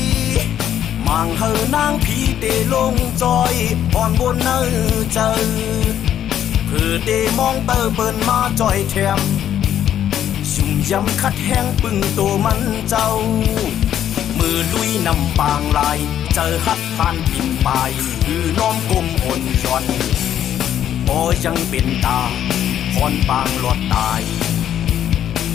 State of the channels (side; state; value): right; quieter; 10.4 dB